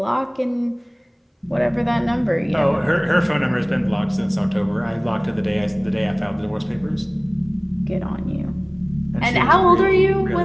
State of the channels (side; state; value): both; identical; correlation 1.00